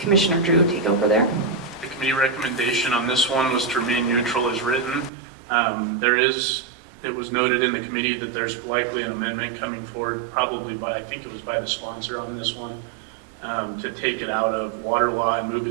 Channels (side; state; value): left; drops out; at 5.1 s